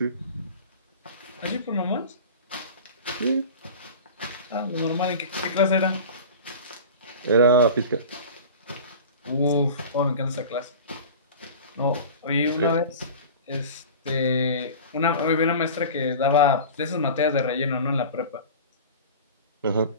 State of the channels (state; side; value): inverted; both; correlation -0.36